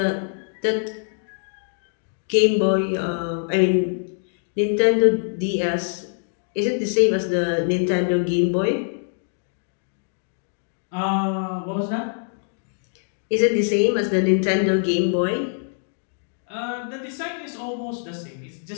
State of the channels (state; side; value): silent; right; digital silence